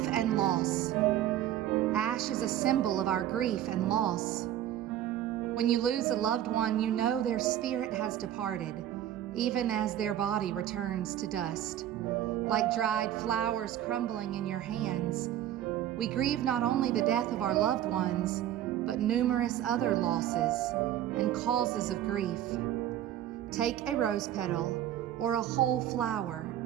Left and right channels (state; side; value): quieter; left; 11.8 dB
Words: and loss. Ash is a symbol of our grief and loss. When you lose a loved one, you know their spirit has departed, even as their body returns to dust. Like dried flowers crumbling in your hands, we grieve not only the death of our loved ones, but numerous other losses and causes of grief. Take a rose petal or a whole flower,